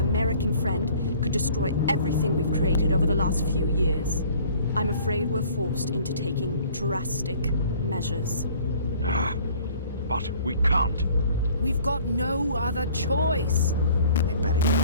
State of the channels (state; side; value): inverted; both; correlation -0.52